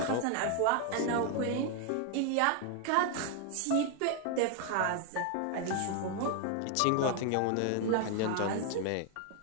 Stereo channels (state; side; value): different; both; correlation 0.00